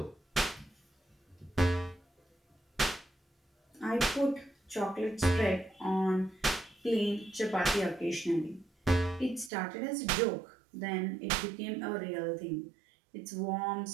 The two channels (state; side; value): drops out; left; at 9.5 s